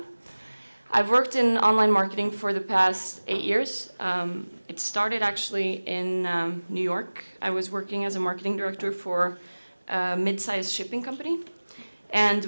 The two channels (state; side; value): inverted; both; correlation -1.00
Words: I've worked in online marketing for the past 8 years. It started actually in New York. I was working as a marketing director for a mid-sized shipping company. And